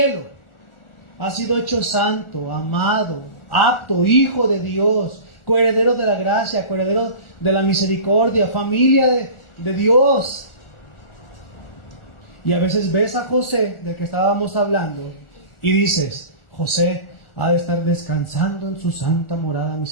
Has sido hecho santo, amado, apto, hijo de Dios, coheredero de la gracia, coheredero de la misericordia, familia de Dios. Y a veces ves a José, del que estábamos hablando, y dices: José ha de estar descansando en su santa morada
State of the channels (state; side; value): late; right; 1.4 ms